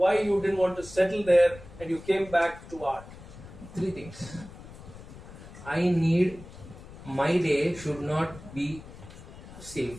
you didn't want to settle there and you came back to art? 3 things. My day should not be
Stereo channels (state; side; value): noise; left; rumble, 16 dB below the sound